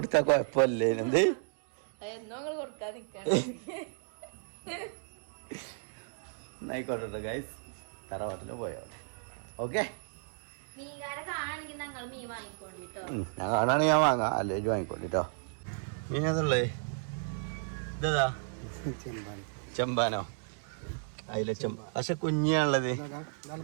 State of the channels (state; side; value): silent; left; digital silence